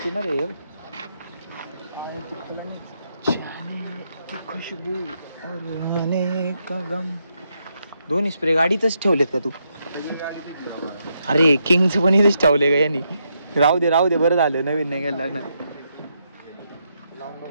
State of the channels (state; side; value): inverted; both; correlation -0.80